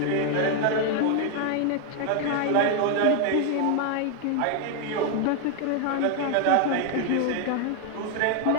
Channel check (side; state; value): both; different; correlation 0.01